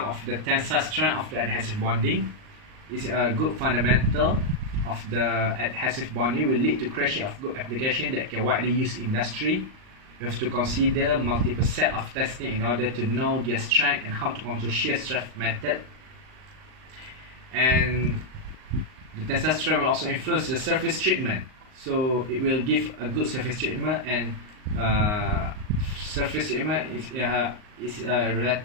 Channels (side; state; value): left; late; 38 ms